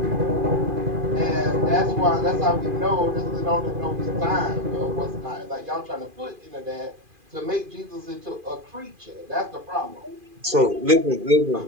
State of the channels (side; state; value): left; late; 2.4 ms